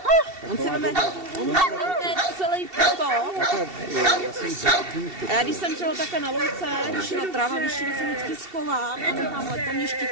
On si veme celý to. A já když jsem třeba takhle na louce, když je tráva vyšší, tak jsem vždycky schovám a nechám let, to mě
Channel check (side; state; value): left; late; 2.7 ms